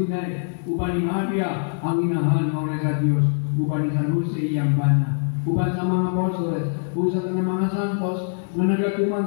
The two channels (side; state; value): right; silent; 55 dB below the other